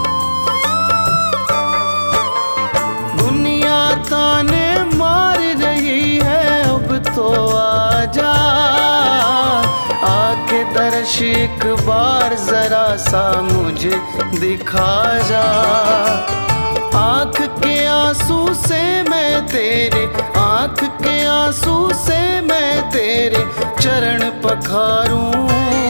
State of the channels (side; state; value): both; inverted; correlation -1.00